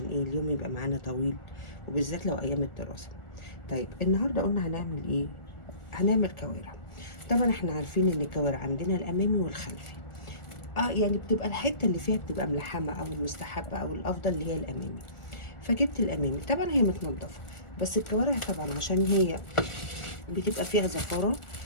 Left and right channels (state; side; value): late; right; 1.4 ms